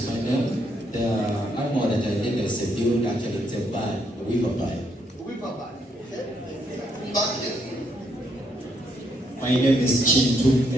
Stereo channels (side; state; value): both; normal; correlation 0.73